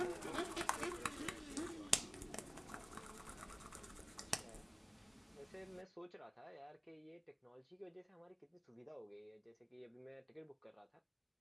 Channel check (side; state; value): both; identical; correlation 1.00